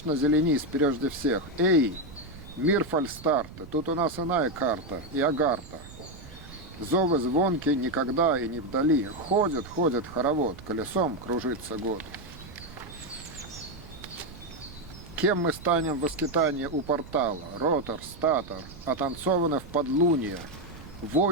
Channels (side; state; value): right; noise; rumble, 16 dB below the sound